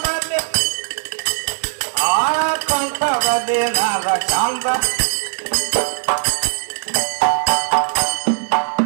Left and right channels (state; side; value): silent; left; digital silence